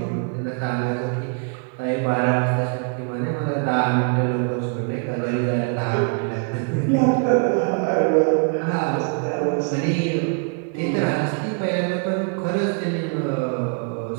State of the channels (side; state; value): left; quieter; 38.1 dB